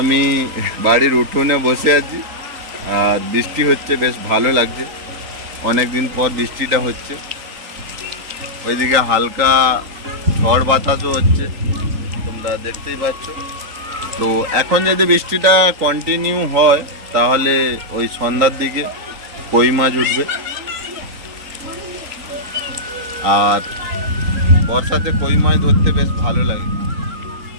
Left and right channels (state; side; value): late; left; 3.8 ms